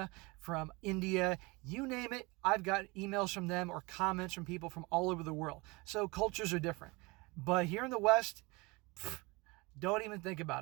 from India, you name it. I've got emails from them or comments from people from all over the world. So cultures are different. But here in the West, don't even think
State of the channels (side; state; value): left; quieter; 25.4 dB